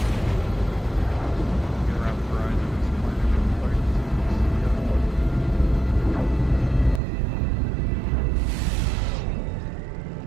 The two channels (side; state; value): left; drops out; at 7.0 s